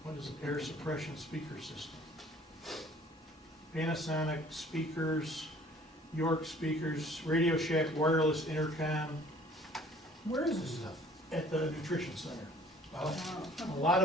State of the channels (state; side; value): normal; both; correlation 0.54